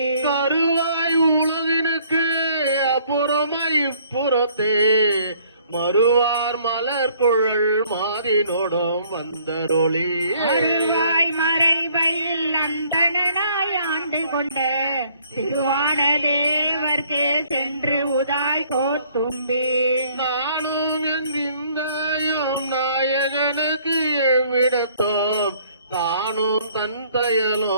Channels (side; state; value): both; inverted; correlation -0.61